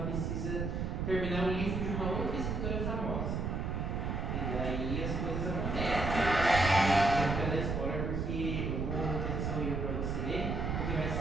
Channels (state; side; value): noise; right; rumble, 1 dB below the sound